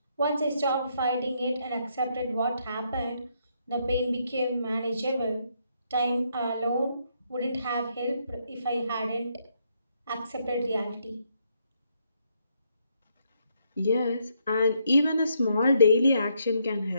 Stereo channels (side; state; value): both; inverted; correlation -0.75